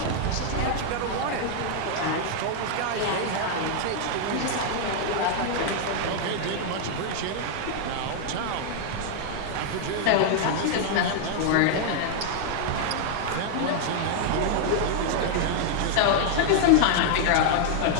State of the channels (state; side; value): different; both; correlation -0.01